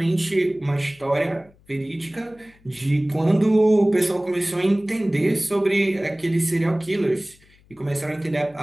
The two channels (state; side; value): noise; left; hum, 30 dB below the sound